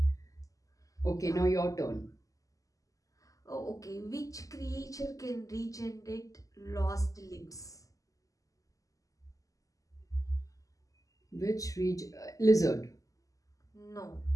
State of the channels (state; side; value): late; right; 0.16 ms